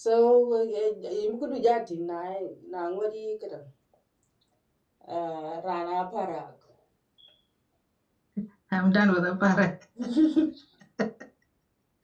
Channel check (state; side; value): identical; both; correlation 1.00